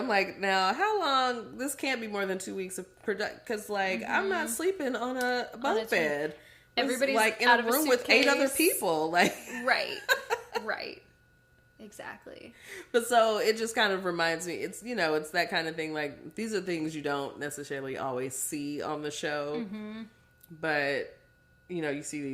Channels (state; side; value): identical; both; correlation 1.00